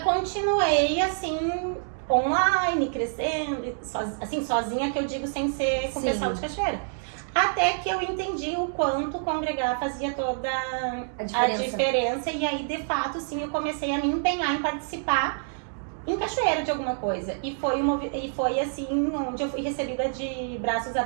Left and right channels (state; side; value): silent; left; digital silence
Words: assim, online, crescendo, assim, sozinha, que eu digo, sem ser com o pessoal de Cachoeira. Até que eu entendi o quanto congregar fazia toda a diferença. E aí, de fato, sim, eu comecei a me empenhar em participar em Cachoeira de alguma coisa. E foi assim, onde eu fui recebida de braços